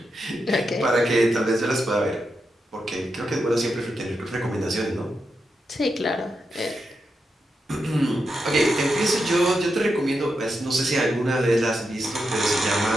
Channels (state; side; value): normal; both; correlation 0.86